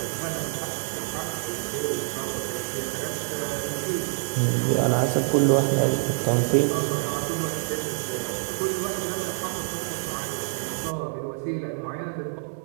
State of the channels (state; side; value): silent; left; 61 dB below the other